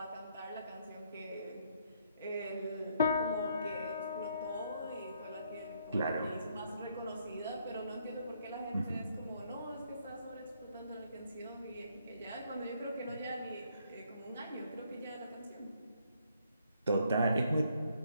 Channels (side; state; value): both; inverted; correlation -0.70